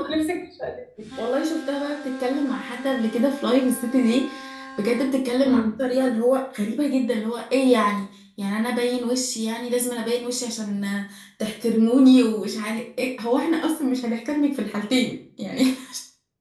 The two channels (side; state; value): both; identical; correlation 1.00